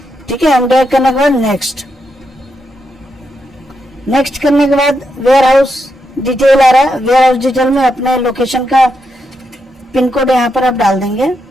ठीक है। एम डायरेक्ट करने के बाद नेक्स्ट करने के बाद वेयर हाउस डिटेल आ रहा है। वेयर हाउस डिटेल में अपने लोकेशन का पिन कोड यहाँ पर आप डाल देंगे।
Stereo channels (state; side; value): normal; both; correlation 0.83